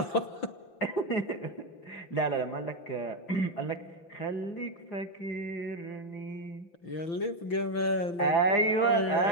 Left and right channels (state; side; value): late; right; 6.0 ms